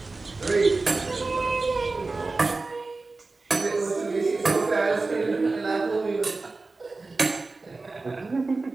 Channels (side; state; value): left; quieter; 3.6 dB